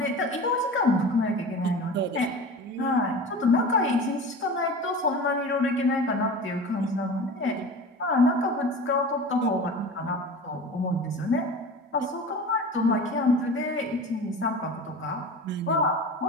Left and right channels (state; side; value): normal; both; correlation 0.35